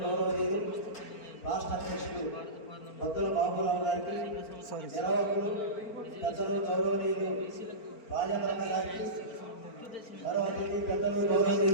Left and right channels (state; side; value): late; right; 4.4 ms